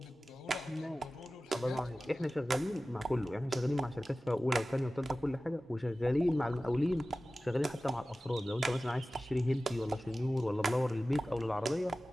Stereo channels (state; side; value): normal; both; correlation 0.96